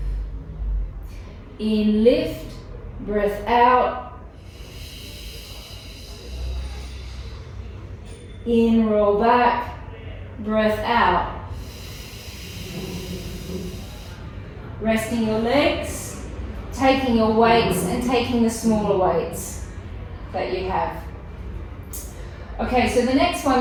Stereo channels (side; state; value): both; identical; correlation 1.00